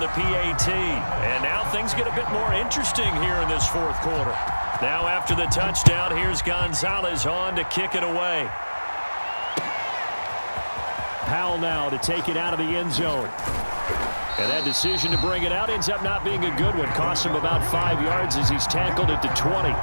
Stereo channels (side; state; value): both; inverted; correlation -1.00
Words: the PAT. And now things get a bit more interesting here in this fourth quarter. Now after the touchdown, here's Gonzalez on to kick it away. Powell now to take it out of the end zone. And that decision to bring it out ends up not being a good one. Costs him about 5 yards as he's tackled at the 20.